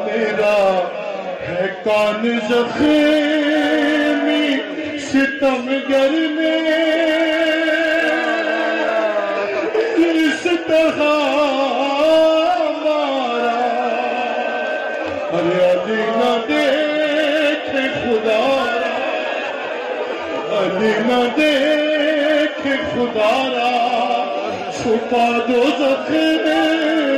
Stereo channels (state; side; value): identical; both; correlation 1.00